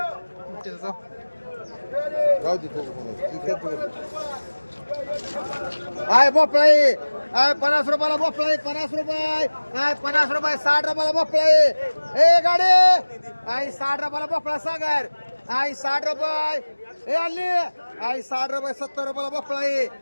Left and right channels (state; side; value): inverted; both; correlation -1.00